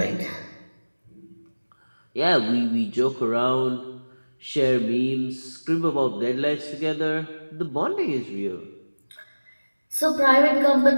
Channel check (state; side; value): inverted; both; correlation -1.00